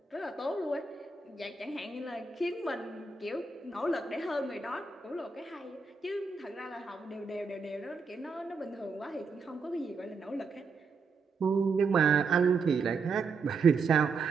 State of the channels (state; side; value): quieter; left; 4.5 dB